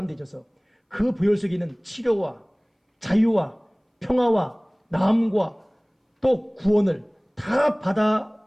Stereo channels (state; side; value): identical; both; correlation 1.00